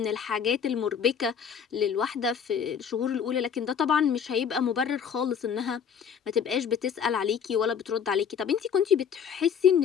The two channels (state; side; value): quieter; right; 7.5 dB